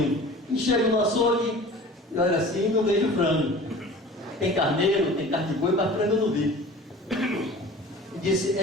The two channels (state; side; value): normal; both; correlation 0.42